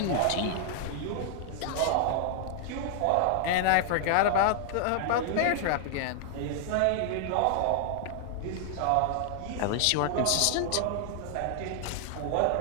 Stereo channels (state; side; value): different; both; correlation 0.00